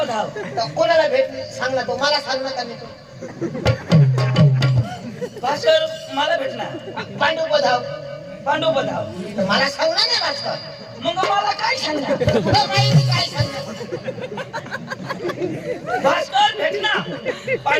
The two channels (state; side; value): identical; both; correlation 1.00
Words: हाव तर कोणाला भेट सांग ना तो मला सांग ना का नाही तो भास्कर मला भेटणार पांडुपत हाव पांडुपत हाव तर मला सांगणार नाही भास्कर मग मला काय सांगणार तुला माहिती काय सांगणार भास्कर भेटणार